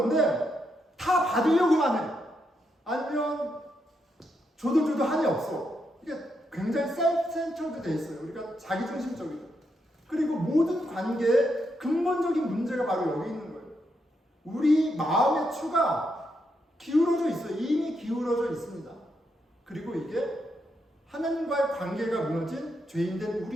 다 받으려고만 해. 아니면 줘도 한이 없어. 이게 굉장히 셀프-센터드 돼 있어요. 우리가 자기중심적이죠. 그리고 모든 관계에 근본적인 문제가 바로 여기 있는 거예요. 우리 마음의 추가 기울어져 있어요. 이미 기울어져 있습니다. 그리고 이게 하나님과의 관계가 무너진 죄인된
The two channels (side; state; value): both; normal; correlation 0.81